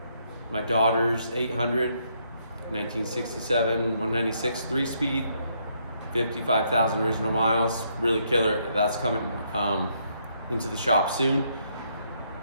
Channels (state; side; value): inverted; both; correlation -0.73